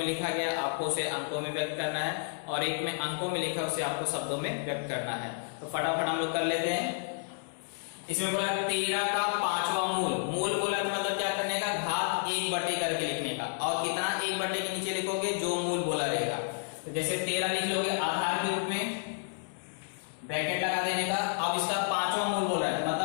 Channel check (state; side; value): silent; right; 57 dB below the other